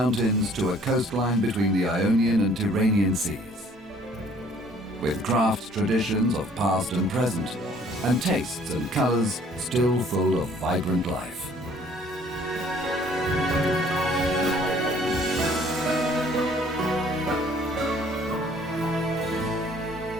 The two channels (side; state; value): both; normal; correlation 0.58